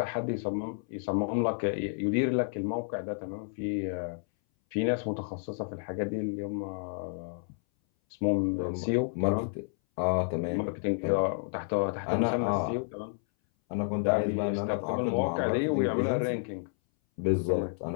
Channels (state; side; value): silent; right; 58 dB below the other